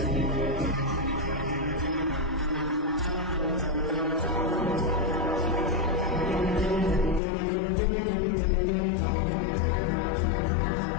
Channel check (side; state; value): right; drops out; at 7.2 s